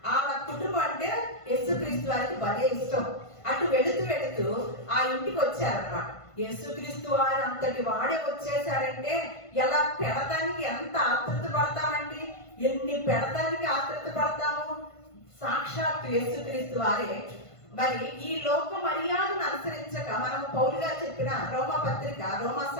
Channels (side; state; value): right; late; 1.5 ms